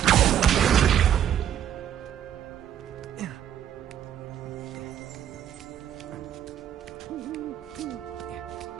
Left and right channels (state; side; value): quieter; left; 10.1 dB